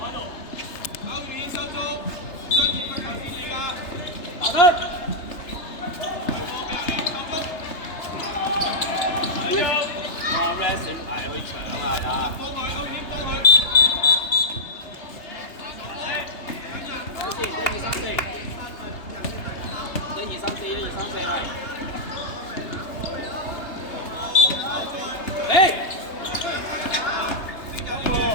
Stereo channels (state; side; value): late; right; 3.3 ms